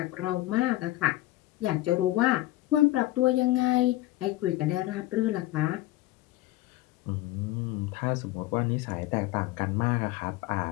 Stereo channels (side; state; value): right; quieter; 16.5 dB